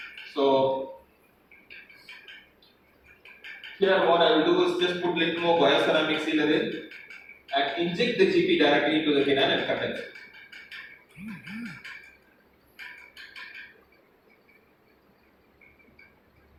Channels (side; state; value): both; identical; correlation 1.00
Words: So here what I will do is just put little more bioceramic sealer in and inject the GP directly into the canal and condense it.